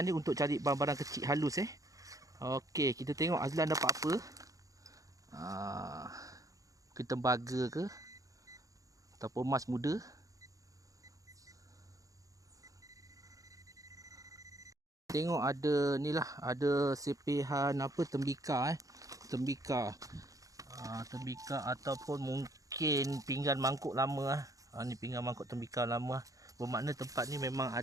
untuk cari barang-barang kecil halus Okey, kita tengok Azlan dapat apa. Mungkin tembaga ke ataupun emas muda. Tengok ada ni lah, ada sepihan tembika tembika ataupun mungkin pinggan mangkuk lama ni pinggan mangkuk tembika lama. Bermakna tempat ni memang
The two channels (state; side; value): late; left; 0.17 ms